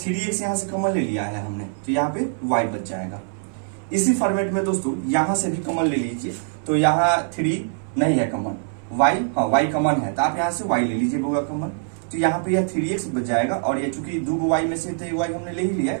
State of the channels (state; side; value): silent; left; 61 dB below the other